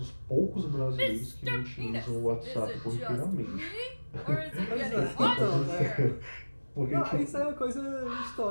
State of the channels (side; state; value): both; inverted; correlation -1.00